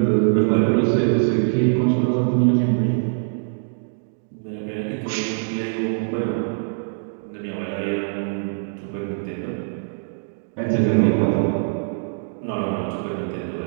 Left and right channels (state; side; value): silent; left; digital silence